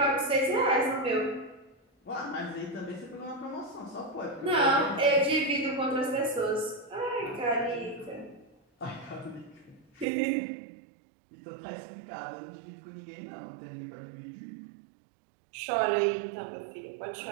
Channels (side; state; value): left; drops out; at 10.1 s